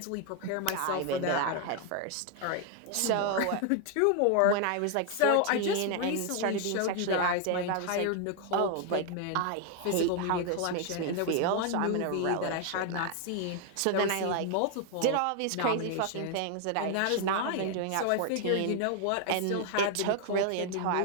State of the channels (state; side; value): different; both; correlation 0.00